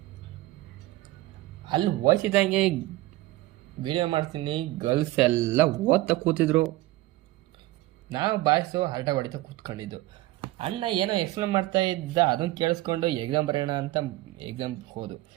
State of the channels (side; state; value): left; quieter; 17.7 dB